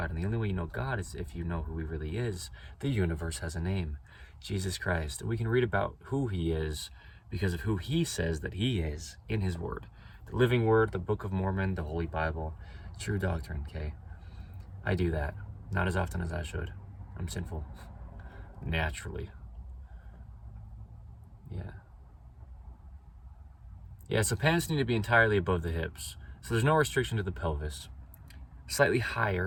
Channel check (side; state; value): both; identical; correlation 1.00